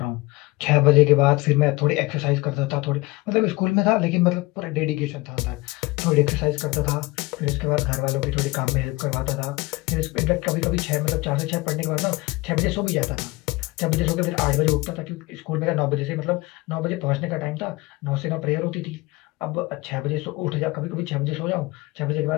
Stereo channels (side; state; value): right; quieter; 22.0 dB